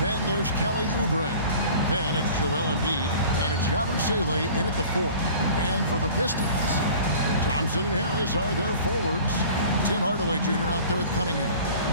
Then there's Kelly Oubre. Then it's Joel Embiid, and it's Yabusele in at the 4. And for the Pistons, Thompson and Harris are their forwards. Tim Hardaway Jr. out there with Cunningham.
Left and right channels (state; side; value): inverted; both; correlation -0.44